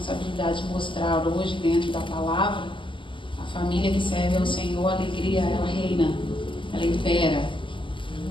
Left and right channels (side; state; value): right; late; 0.25 ms